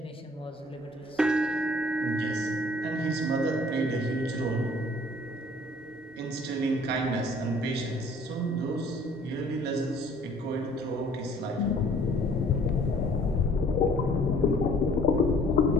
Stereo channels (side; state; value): both; normal; correlation 0.56